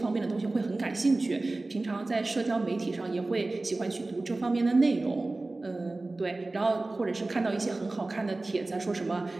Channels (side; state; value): left; quieter; 3.1 dB